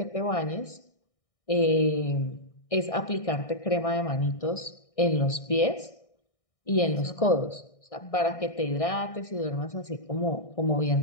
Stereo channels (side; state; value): right; late; 1.6 ms